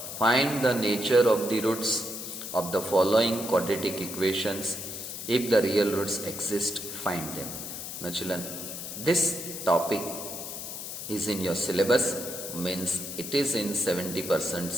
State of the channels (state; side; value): noise; left; hiss, 8 dB below the sound